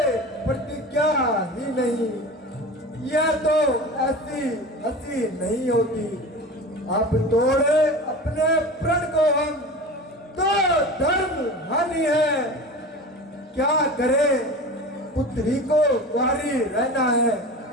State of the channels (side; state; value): both; normal; correlation 0.33